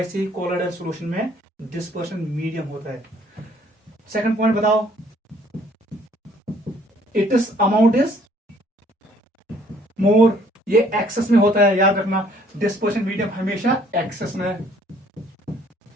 ही कोलोइडल सॉल्यूशन में डिस्पर्शन मीडियम होता है। सेकंड पॉइंट बताओ, it is amount is more, ये एक्सेस में होता है, याद रखना। डिस्पर्शन मीडियम हमेशा एक्सेस में,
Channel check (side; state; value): both; normal; correlation 0.61